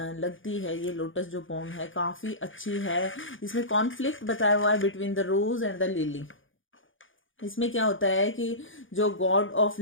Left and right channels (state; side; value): late; right; 0.57 ms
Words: लगती है, ये लोटस जो पोम है काफी अच्छी है। इसमें कॉन्फ्लिक्ट बताया हुआ है between the rose and the lily. इसमें क्या होता है कि जो गॉड ऑफ